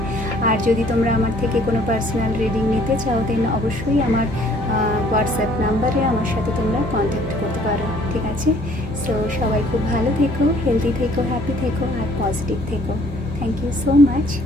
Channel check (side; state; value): both; normal; correlation 0.59